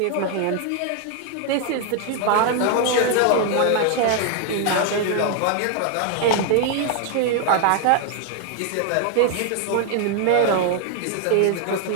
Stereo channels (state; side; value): different; both; correlation 0.00